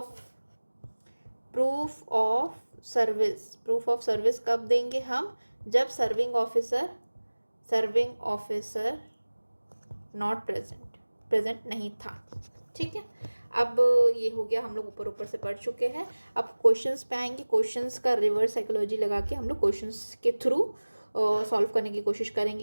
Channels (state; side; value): inverted; both; correlation -1.00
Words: ऑफ सर्विस कब देंगे हम, जब सर्विंग ऑफिसर नॉट प्रेजेंट नहीं था। ठीक है, अब ये हो गया, हम लोग ऊपर से पढ़ चुके हैं। अब क्वेश्चंस पे आएंगे। क्वेश्चंस का रिवर्स साइकोलॉजी लगा के हम लोग क्वेश्चंस के थ्रू सॉल्व करने की कोशिश